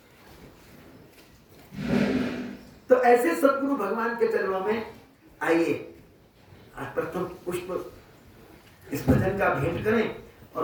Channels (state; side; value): identical; both; correlation 1.00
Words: ऐसे सदगुरु भगवान के चरणों में आइए, आज प्रथम पुष्प इस भजन का भेंट करें